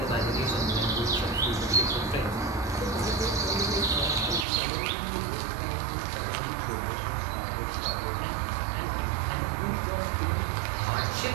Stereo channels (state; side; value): drops out; left; at 4.5 s